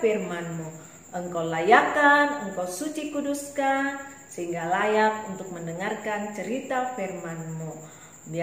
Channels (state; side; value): identical; both; correlation 1.00